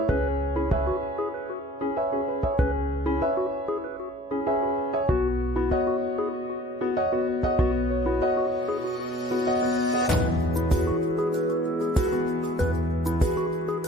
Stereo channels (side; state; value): both; normal; correlation 0.50